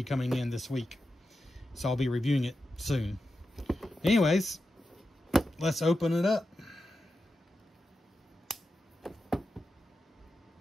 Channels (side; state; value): both; normal; correlation 0.90